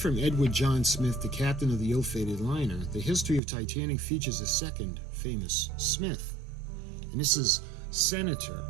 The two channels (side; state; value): left; drops out; at 3.4 s